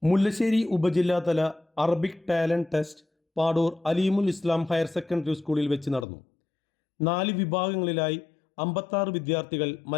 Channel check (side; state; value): right; drops out; at 6.1 s